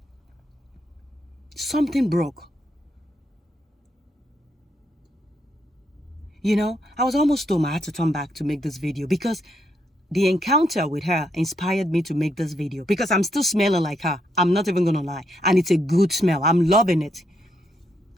Something broke. I was almost told I had to turn back to make this video because the encounter with her inspired me to make this video because I'm still smelling like her. I'm not even going to lie. And it's a good smell. I'm loving it.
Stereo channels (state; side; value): normal; both; correlation 0.77